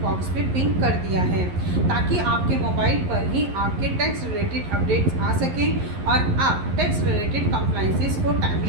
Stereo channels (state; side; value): late; left; 11 ms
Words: बॉक्स पे पिन कर दिया है ताकि आपके मोबाइल पर ही आपके टैक्स रिलेटेड अपडेट्स आ सकें और आप टैक्स रिलेटेड कंप्लाइंसेस को